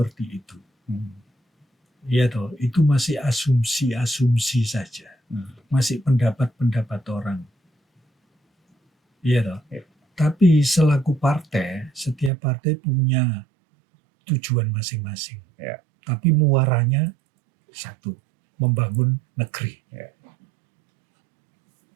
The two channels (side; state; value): left; drops out; at 12.3 s